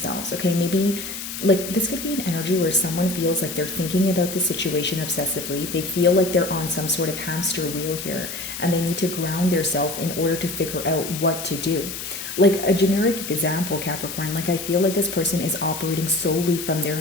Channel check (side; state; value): left; noise; hiss, 7 dB below the sound